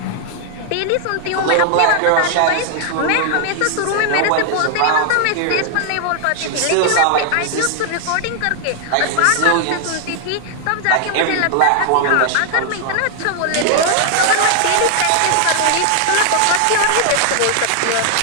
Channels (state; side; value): different; both; correlation 0.00